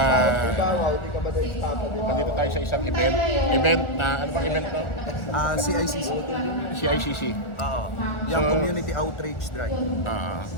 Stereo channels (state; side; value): late; right; 1.4 ms